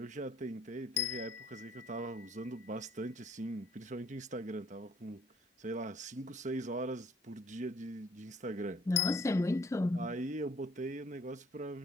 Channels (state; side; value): normal; both; correlation 0.59